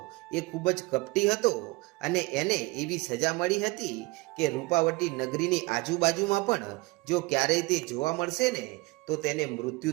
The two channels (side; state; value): left; quieter; 23.7 dB